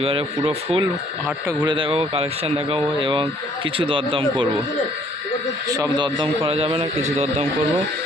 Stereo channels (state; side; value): normal; both; correlation 0.61